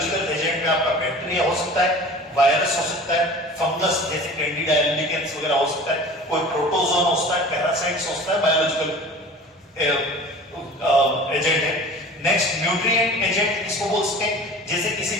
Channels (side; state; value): both; normal; correlation 0.41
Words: एजेंट में आपका बैक्टीरिया हो सकता है, वायरस हो सकता है, फंगस जैसे कैंडिडा एल्बिकेंस वगैरह हो सकता है, कोई प्रोटोजोन हो सकता है, पैरासाइट्स हो सकता है, बायोलॉजिकल एजेंट है। नेक्स्ट न्यूट्रिएंट एजेंट किसको बोल सकते हैं? जैसे किसी